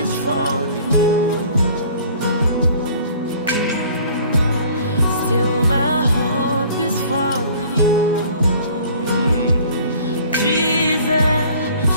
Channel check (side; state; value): both; inverted; correlation -0.51